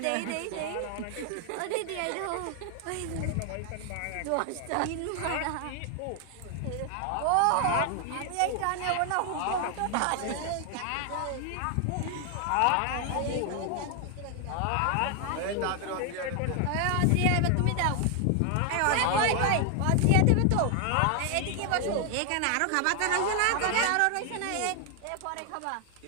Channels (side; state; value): both; different; correlation 0.00